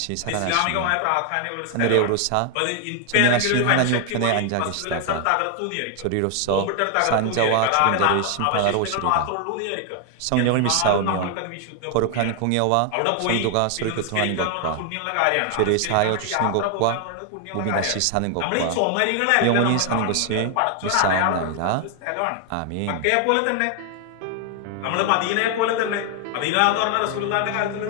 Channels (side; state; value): both; different; correlation 0.00